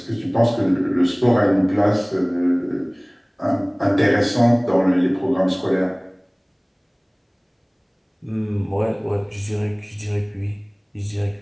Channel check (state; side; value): identical; both; correlation 1.00